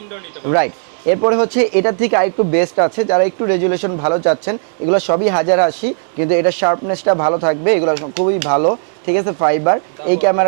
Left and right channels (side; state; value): left; silent; 62 dB below the other